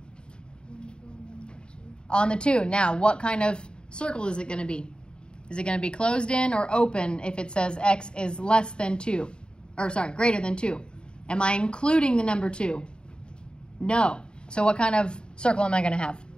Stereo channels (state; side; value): late; right; 0.050 ms